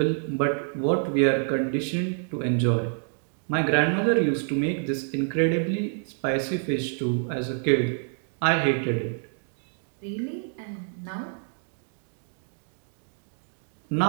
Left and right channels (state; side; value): silent; left; 60 dB below the other